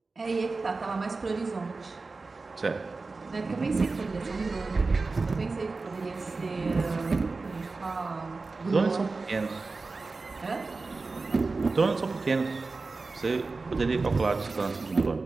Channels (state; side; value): quieter; left; 3.8 dB